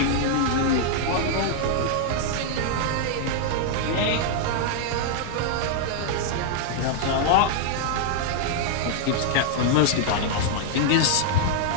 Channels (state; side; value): different; both; correlation -0.01